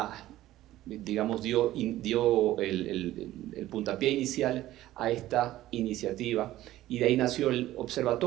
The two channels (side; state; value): left; quieter; 14.9 dB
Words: digamos, dio el puntapié inicial a esta iniciativa, y de ahí nació el